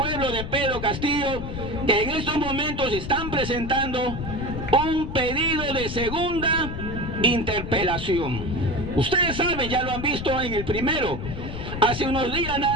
de Pedro Castillo, que en estos momentos están presentando un pedido de segunda interpelación. Ustedes saben, ya lo han visto en el primero. Hace unos días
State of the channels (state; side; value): noise; left; rumble, 7 dB below the sound